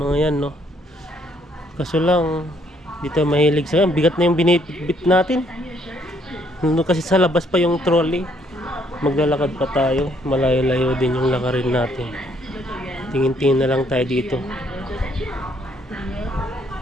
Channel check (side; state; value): both; normal; correlation 0.67